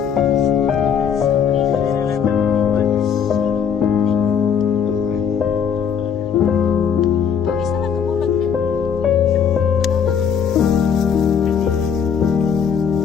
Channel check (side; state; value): right; quieter; 7.4 dB